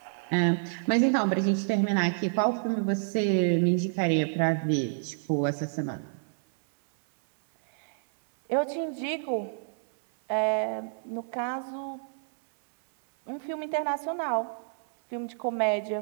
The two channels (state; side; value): silent; left; 58 dB below the other